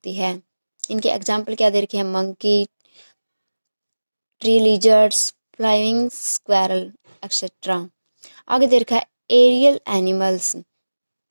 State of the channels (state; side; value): inverted; both; correlation -1.00